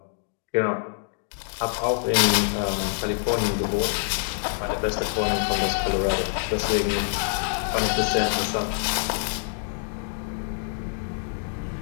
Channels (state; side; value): silent; right; digital silence